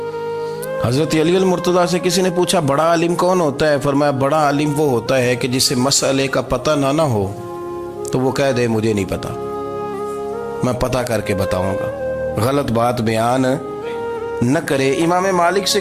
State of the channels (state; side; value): identical; both; correlation 1.00